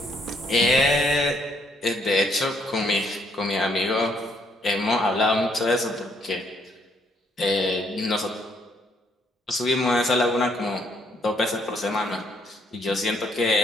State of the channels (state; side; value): normal; both; correlation 0.70